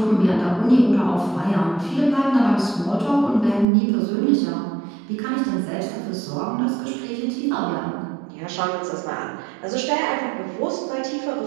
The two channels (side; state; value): left; drops out; at 3.7 s